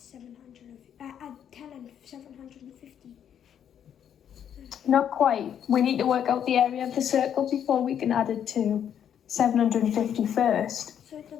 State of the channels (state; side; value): quieter; right; 9.1 dB